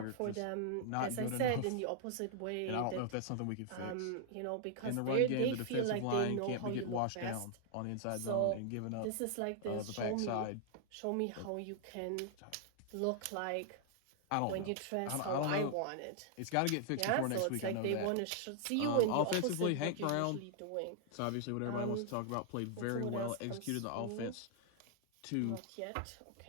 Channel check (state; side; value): different; both; correlation 0.00